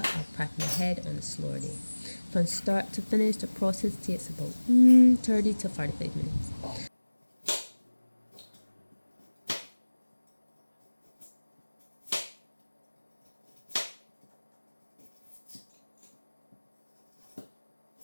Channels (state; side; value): inverted; both; correlation -1.00